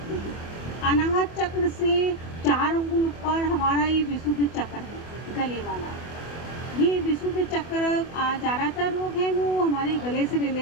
हैं। अनाहत चक्र से 4 अंगुल ऊपर हमारा ये विशुद्ध चक्र है, गले वाला। ये विशुद्ध चक्र ज़्यादातर रोग हैं वो हमारे गले से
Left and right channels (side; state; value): right; late; 24 ms